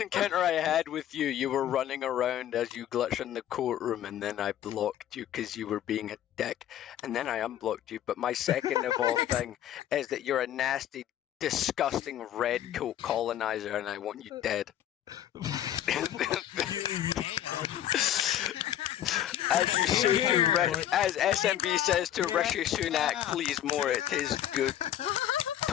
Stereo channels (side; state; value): right; quieter; 11.5 dB